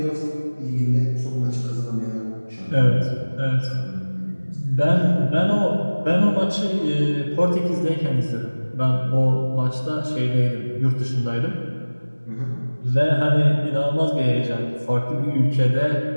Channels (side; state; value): both; inverted; correlation -1.00